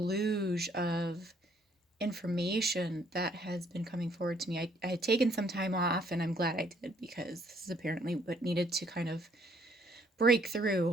of information that has been coming forward to me. I had taken some time off, and I'm glad I did, because this is apparently what needed to kind of break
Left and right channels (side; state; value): both; normal; correlation 0.65